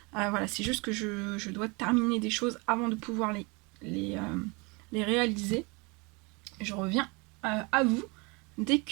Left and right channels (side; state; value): left; quieter; 28.7 dB